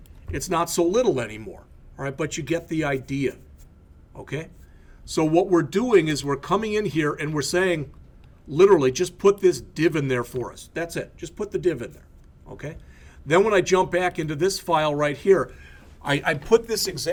it's not so little anymore, all right, but you get the idea, okay? So what we're doing is we're coming in here and we're saying, literally, just put this div in there for us. That's it. Just put the div in there, okay? Then when I jump back into this file right here, I put this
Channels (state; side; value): identical; both; correlation 1.00